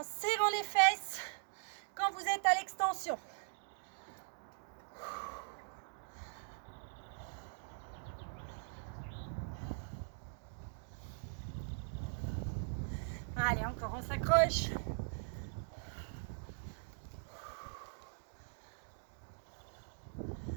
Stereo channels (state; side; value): silent; left; digital silence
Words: serrant les fesses quand vous êtes à l'extension. Allez, encore, on s'accroche.